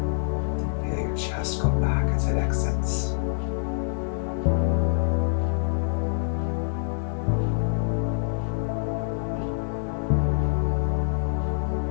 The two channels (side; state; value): right; silent; digital silence